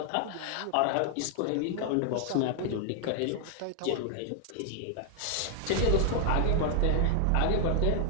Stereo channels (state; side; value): different; both; correlation 0.00